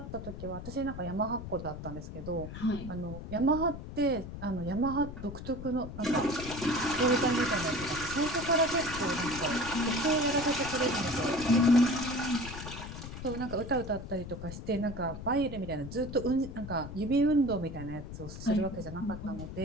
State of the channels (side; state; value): left; noise; rumble, 10 dB below the sound